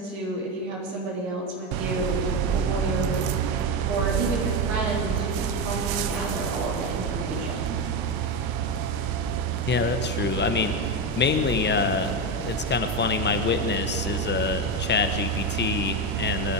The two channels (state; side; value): normal; both; correlation 0.13